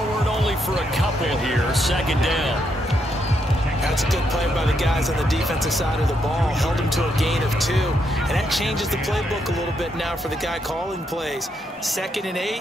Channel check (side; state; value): both; normal; correlation 0.78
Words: only for a couple here. 2nd down. That's a good play by the guys on the defensive side of the ball. Held him to a gain of 2. And that changes the playbook a little bit now for the guy calling plays. 2nd and